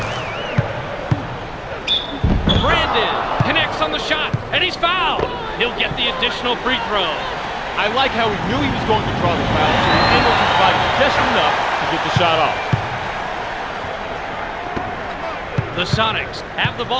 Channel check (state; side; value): identical; both; correlation 1.00